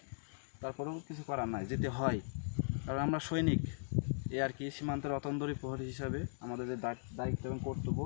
তারপরেও কিছু করার নাই, যেতে হয়, কারণ আমরা সৈনিক। এ আর কি, সীমান্তের অতন্দরী প্রহরী হিসাবে আমাদের যে দায়িত্ব এবং কর্তব্য,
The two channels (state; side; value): silent; right; digital silence